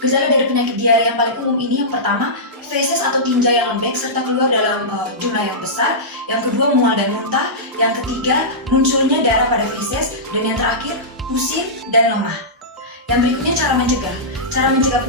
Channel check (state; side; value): normal; both; correlation -0.15